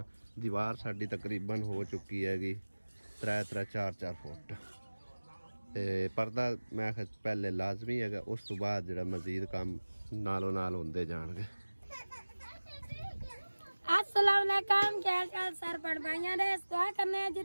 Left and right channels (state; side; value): inverted; both; correlation -1.00